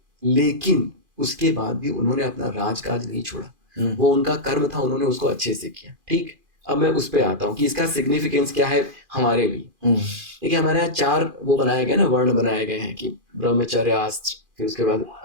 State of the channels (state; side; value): late; left; 2.5 ms